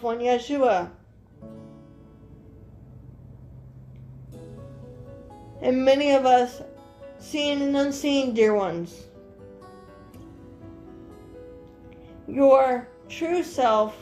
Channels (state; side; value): identical; both; correlation 1.00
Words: one Yeshua, and many of us seen and unseen, dear ones. Your true self